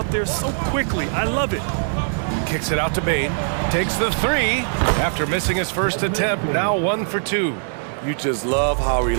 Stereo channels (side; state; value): left; silent; digital silence